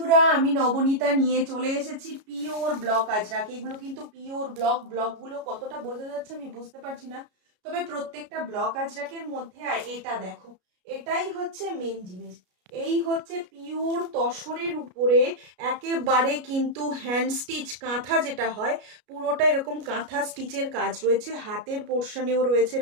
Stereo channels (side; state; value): left; late; 33 ms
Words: আমি নবনীতা নিয়ে চলে এসেছি পিওর ব্লক আজরাক। এগুলো কিন্তু পিওর ব্লকগুলো কতটা বোঝা যাচ্ছে আমি বুঝতে পারছি না, তবে প্রত্যেকটা ব্লক আজরাকের মধ্যে এটা দেখো, এটাই হচ্ছে মেন জিনিস। এই হচ্ছে পিওর তসরের উপরে একেবারে কিন্তু হ্যান্ড স্টিচ কাঁথা যেটা হয়, পুরোটা এরকম কাঁথা স্টিচের কাজ রয়েছে, হাতের পোর্শনেও রয়েছে